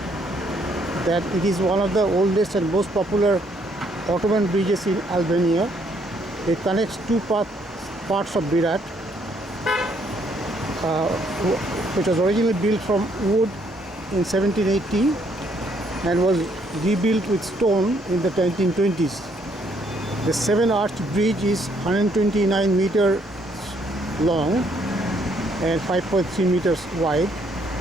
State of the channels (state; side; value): normal; both; correlation 0.69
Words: that it is one of the oldest and most popular Ottoman bridges in Albania. It connects two parts of Berat, which was originally built from wood in 1780 and was rebuilt with stone in the 1920s. The 7-arched bridge is 129 meters long and 5.3 meters wide,